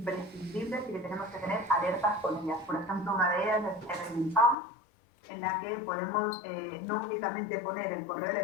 y que tenemos que tener alertas con ellas. Por ejemplo, una de ellas es el Found, en la que podemos no únicamente poner el correo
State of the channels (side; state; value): right; drops out; at 4.5 s